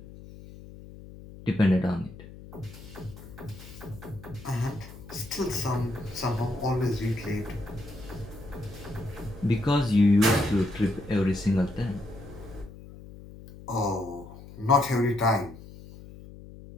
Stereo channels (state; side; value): noise; left; hum, 16 dB below the sound